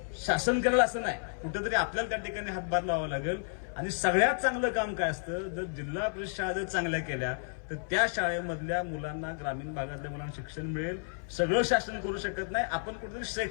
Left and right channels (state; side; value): silent; right; 57 dB below the other